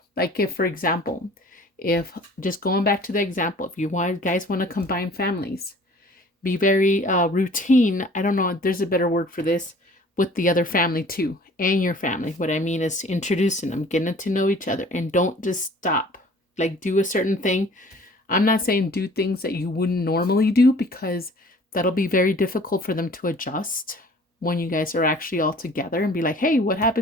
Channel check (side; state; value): both; normal; correlation 0.50